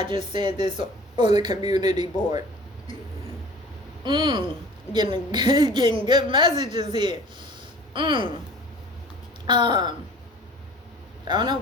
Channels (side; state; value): both; normal; correlation 0.45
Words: just said this on the community board. Getting good messages here. I don't know